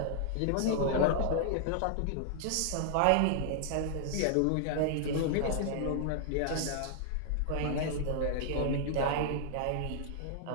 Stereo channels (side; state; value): both; different; correlation -0.01